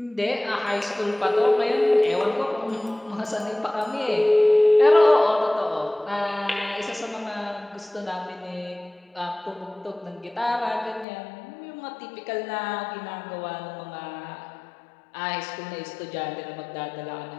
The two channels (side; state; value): right; drops out; at 11.1 s